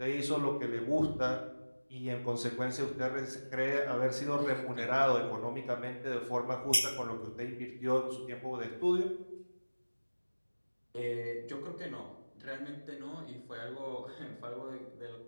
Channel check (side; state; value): both; inverted; correlation -1.00